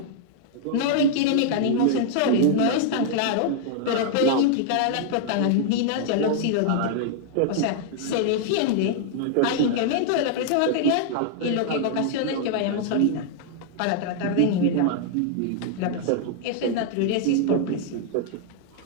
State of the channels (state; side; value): different; both; correlation -0.01